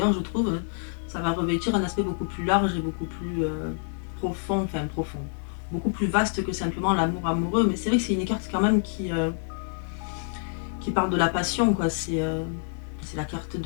je trouve, ça va revêtir un aspect beaucoup plus large et beaucoup plus profond, beaucoup plus vaste que simplement l'amour amoureux. Mais c'est vrai que c'est une carte quand même qui parle de la passion, quoi. C'est la carte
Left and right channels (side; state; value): right; silent; 58 dB below the other